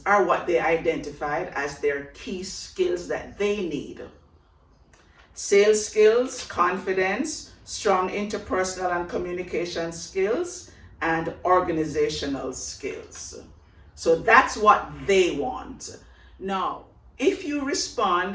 are what they identified as their key skills that they need. Sales skills, confidence, strong interpersonal and communication skills, and organizational skills. So that's what they want. Now, if you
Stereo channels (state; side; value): identical; both; correlation 1.00